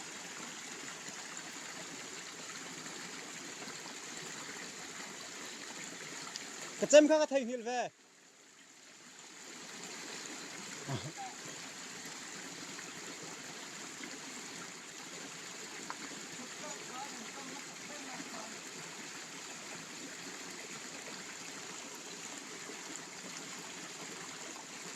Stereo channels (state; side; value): identical; both; correlation 1.00